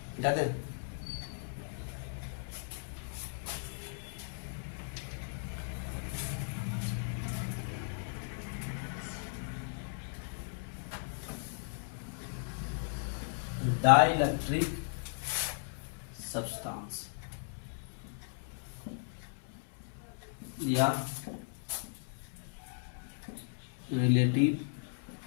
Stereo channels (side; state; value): right; silent; digital silence